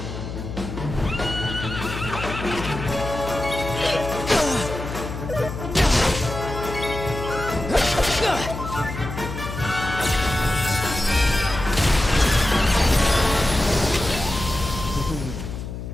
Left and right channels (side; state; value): left; noise; hum, 8 dB below the sound